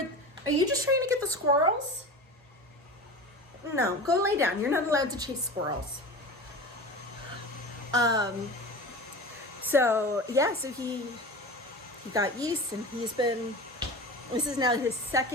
are you just trying to get the squirrels? No, go lay down. You're not allowed to chase squirrels. So he got yeast, and this is now his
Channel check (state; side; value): normal; both; correlation 0.31